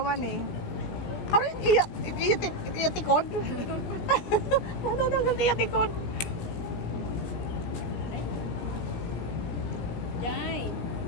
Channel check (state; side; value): late; right; 17 ms